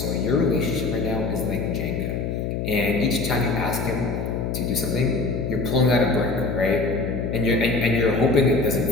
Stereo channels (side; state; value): left; noise; hum, 2 dB below the sound